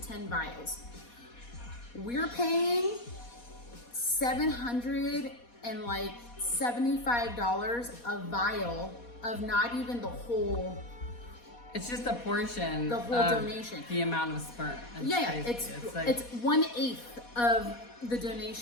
vials. We're paying $775 a vial of not even the whole. It's just a portion. The whole of donation. The amount of sperm. It's like, 1/8 of the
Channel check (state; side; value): late; right; 4.2 ms